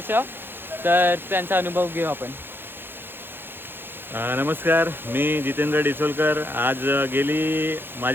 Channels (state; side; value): late; left; 0.10 ms